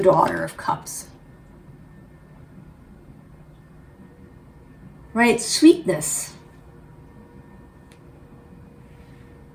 Daughter of Cups. Right, sweetness,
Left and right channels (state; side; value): identical; both; correlation 1.00